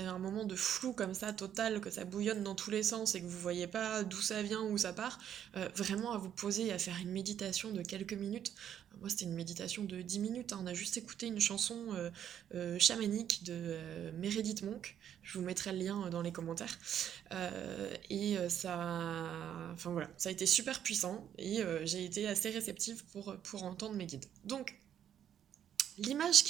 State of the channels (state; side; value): quieter; left; 9.8 dB